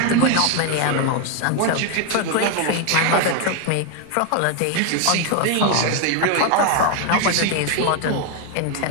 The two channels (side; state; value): both; different; correlation 0.01